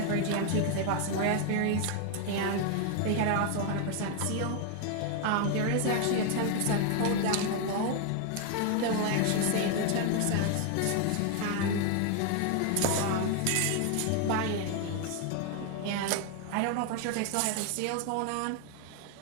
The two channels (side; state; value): both; different; correlation 0.00